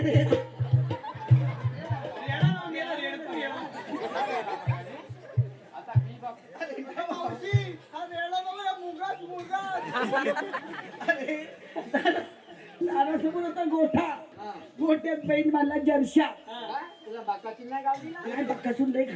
रेडा लावून गेला रेडकू येऊन. आता मी बघ मावशी हा रेडा बघा मुगास मुगास. अरे दारासमोर होता गोठा. गोठ्यात बैल मला जर्शा. काय? तुला बाकाची नाही गावली ना? काय बक्कासून लय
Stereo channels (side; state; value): both; identical; correlation 1.00